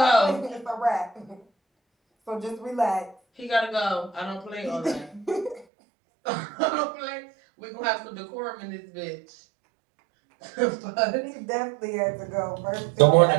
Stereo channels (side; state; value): left; drops out; at 5.7 s